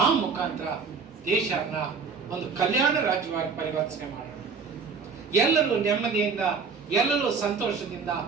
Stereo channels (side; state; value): left; quieter; 5.3 dB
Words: ಆ ಮುಖಾಂತರ ದೇಶನ ಒಂದು ಕಲ್ಯಾಣ ರಾಜ್ಯವಾಗಿ ಪರಿವರ್ತನೆ ಮಾಡೋಣ. ಎಲ್ಲರೂ ನೆಮ್ಮದಿಯಿಂದ, ಎಲ್ಲರೂ ಸಂತೋಷದಿಂದ,